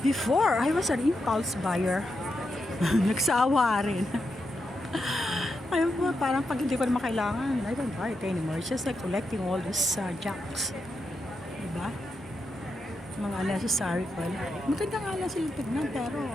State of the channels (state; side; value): normal; both; correlation 0.85